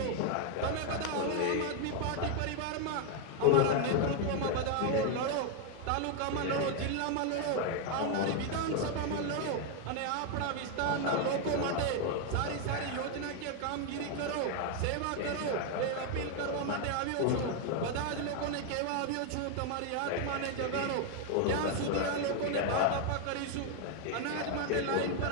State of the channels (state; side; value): different; both; correlation 0.01